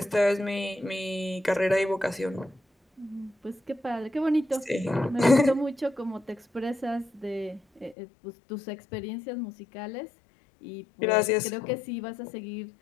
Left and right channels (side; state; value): right; drops out; at 8.0 s